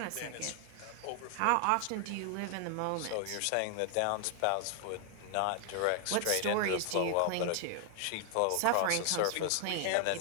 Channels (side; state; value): both; different; correlation 0.00